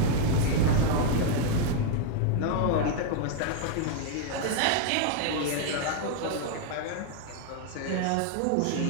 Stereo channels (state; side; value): different; both; correlation 0.00